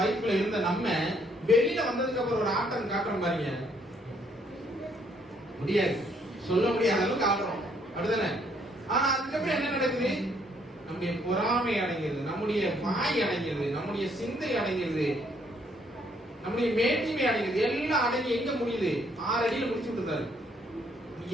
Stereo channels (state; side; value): normal; both; correlation 0.68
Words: இருந்த நம்ம வெளியில வந்ததுக்கு அப்புறம் ஒரு ஆட்டம் காட்டுறோம் பாருங்க, முடியாது, சொல்ல முடியாத அளவுக்கு ஆடுறோம் அப்படிதானே? ஆனா அதுக்கப்புறம் என்ன நடக்குது? நம்முடைய பொறாமை அடங்கிறது, நம்முடைய வாய் அடங்கிறது, நம்முடைய சிந்தை அடங்கிறது, நம்முடைய மேட்டிமை அடங்கிறது, எல்லாம் அடங்கி எங்க முடியுது? 6 அடியில முடிச்சு விட்டுருந்தாரு.